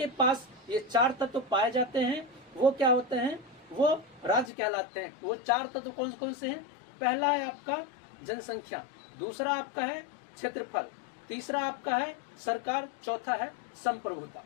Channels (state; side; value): drops out; right; at 4.5 s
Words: पास ये 4 तत्व पाए जाते हैं वो क्या होते हैं? वो राज्य कहलाते हैं। वो 4 तत्व कौन कौन से हैं? पहला है आपका जनसंख्या, दूसरा आपका है क्षेत्रफल, तीसरा आपका है सरकार, चौथा है संप्रभुता।